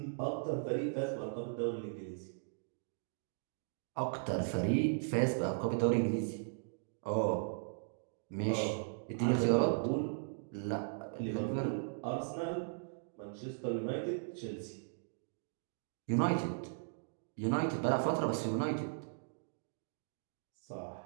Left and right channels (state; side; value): silent; left; digital silence